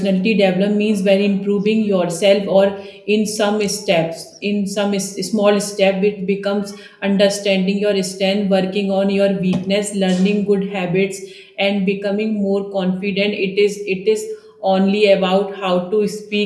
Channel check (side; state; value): both; identical; correlation 1.00